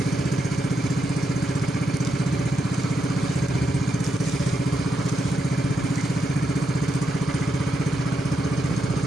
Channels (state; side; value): normal; both; correlation 0.82